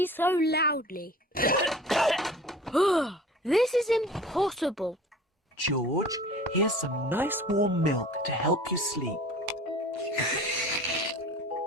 so loudly. This is impossible. George, here's some nice warm milk to help you sleep.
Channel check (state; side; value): normal; both; correlation 0.43